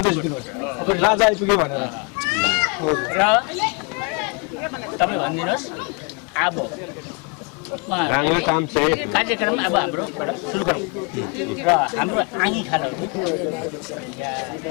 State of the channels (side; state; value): right; quieter; 34.4 dB